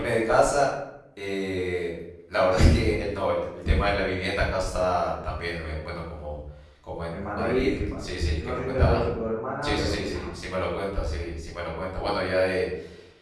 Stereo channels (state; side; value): identical; both; correlation 1.00